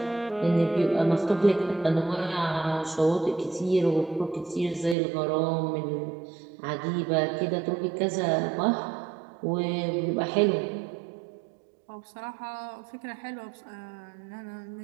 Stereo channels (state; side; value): drops out; left; at 5.0 s